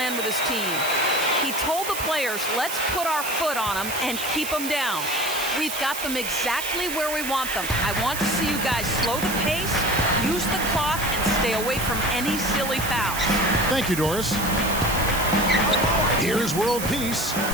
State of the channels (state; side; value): noise; right; hiss, 6 dB below the sound